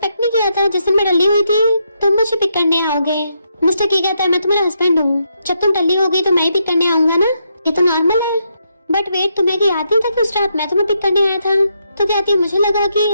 नहीं किया था जिस दिन मैं टल्ली हुई थी तुम मुझे पिक करने आओगे। मिस्टर की कहता है मैं तुम्हारा हस्बैंड हूँ, जब तुम टल्ली हो गई तो मैं ही पिक करने आऊंगा ना, ये तो नॉर्मल है। बट वेट तुम्हें याद नहीं था कि उस रात मैं तुम्हें पिक करने आया था? तो कहती मुझे लगा कि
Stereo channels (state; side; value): inverted; both; correlation -0.80